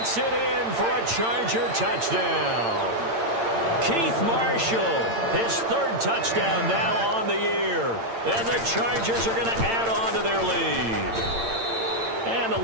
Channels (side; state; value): left; late; 8.8 ms